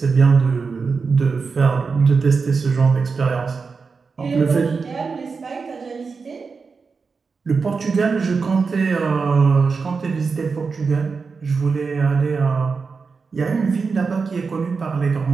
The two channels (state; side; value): quieter; left; 4.9 dB